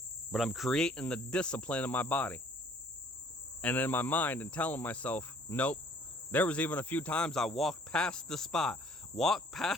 But I'm creating the discipline in my body and in my mind and telling myself, nope. There was even a few times I walked past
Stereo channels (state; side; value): normal; both; correlation 0.57